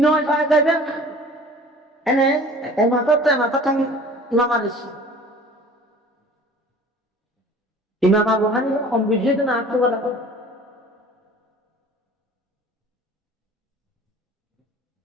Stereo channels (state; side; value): normal; both; correlation 0.46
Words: পাওয়া যাবে এনে মাথা ঠাং নামারিস ইমাম আবু হানিফা সম্বুদ্ধ না আত্ম বলা